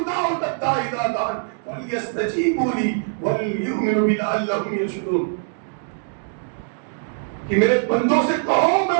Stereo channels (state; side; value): silent; left; digital silence